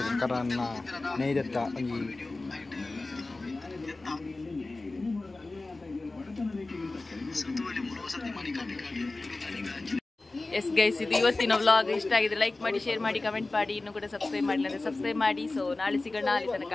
karena neidetta ಎಸ್ ಗೈಸ್, ಇದು ಇವತ್ತಿನ ವ್ಲಾಗ್. ಇಷ್ಟ ಆಗಿದೆ ಲೈಕ್ ಮಾಡಿ, ಶೇರ್ ಮಾಡಿ, ಕಮೆಂಟ್ ಮಾಡಿ. ಇನ್ನೂ ಕೂಡ ಸಬ್ಸ್ಕ್ರೈಬ್ ಮಾಡಿಲ್ಲ ಅಂದರೆ ಸಬ್ಸ್ಕ್ರೈಬ್ ಮಾಡಿ. ಸೊ ನಾಳೆ ಸಿಗೋಣ. ಅಲ್ಲಿ ತನಕ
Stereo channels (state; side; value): quieter; right; 3.2 dB